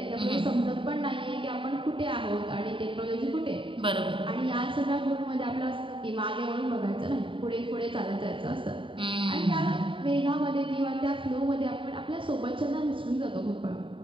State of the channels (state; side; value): late; left; 0.25 ms